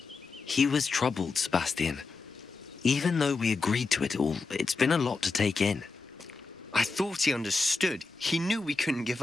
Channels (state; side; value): quieter; right; 4.1 dB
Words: He was troubled, Sebastian. Even though we agreed to it all, it's been a lot to take in. I thought he understood. He knew we couldn't give